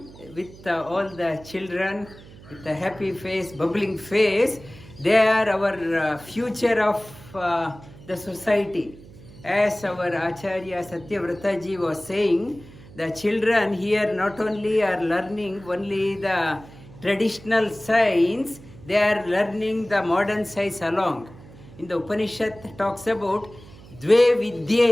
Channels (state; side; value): noise; right; hum, 20 dB below the sound